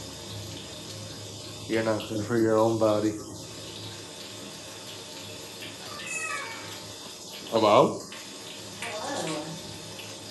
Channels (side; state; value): both; identical; correlation 1.00